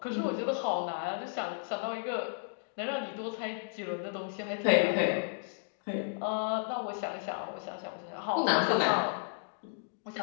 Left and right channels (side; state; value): right; silent; digital silence